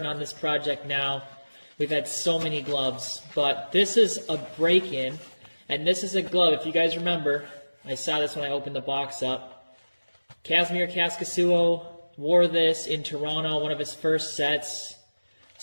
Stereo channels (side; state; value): both; inverted; correlation -1.00